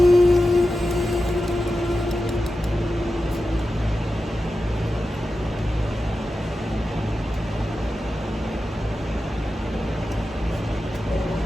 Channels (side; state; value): both; normal; correlation 0.92